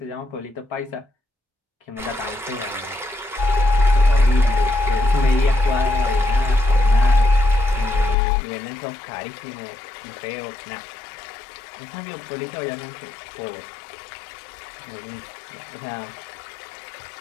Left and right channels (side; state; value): right; drops out; at 8.2 s